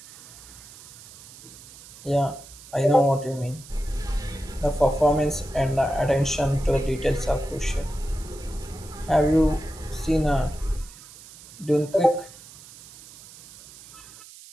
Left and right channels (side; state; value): right; noise; hiss, 19 dB below the sound